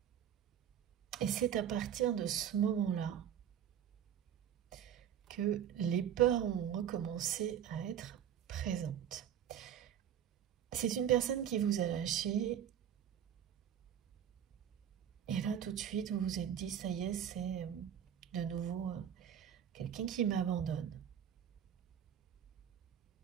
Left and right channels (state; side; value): quieter; left; 9.4 dB